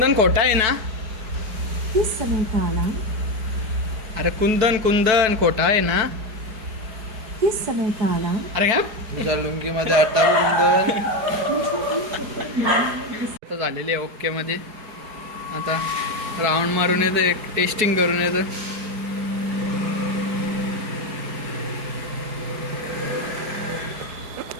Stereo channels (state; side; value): late; left; 4.7 ms